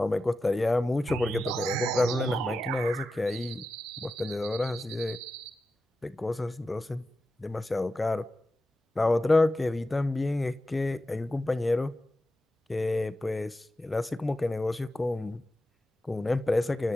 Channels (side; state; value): both; normal; correlation 0.92